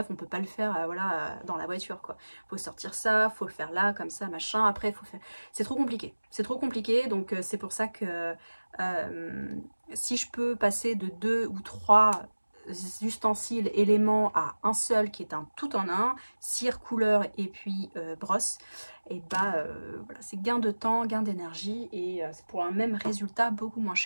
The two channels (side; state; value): both; inverted; correlation -1.00